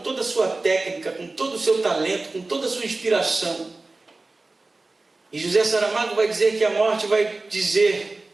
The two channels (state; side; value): quieter; left; 3.3 dB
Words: a sua técnica, com todo o seu talento, com toda a sua inspiração. E José Saramago vai dizer que a morte vai dizer